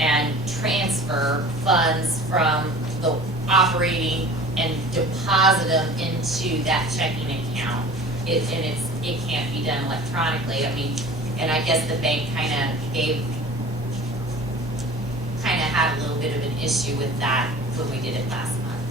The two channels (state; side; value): normal; both; correlation 0.42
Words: transfer funds from the operating and deposit them into that checking account. It can't be done electronically. I mean, and I guess the bank kinda had a little bit of an issue with that when we did it last month.